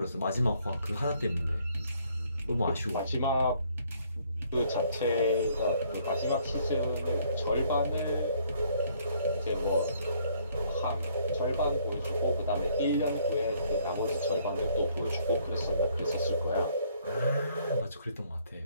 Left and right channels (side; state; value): both; inverted; correlation -0.64